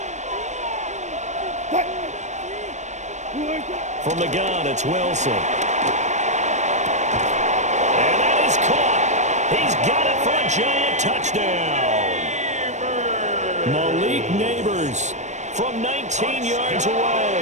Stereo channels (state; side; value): late; left; 0.34 ms